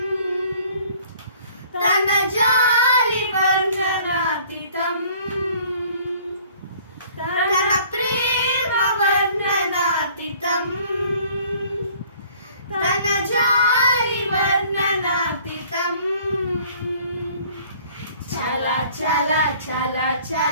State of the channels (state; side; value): inverted; both; correlation -0.54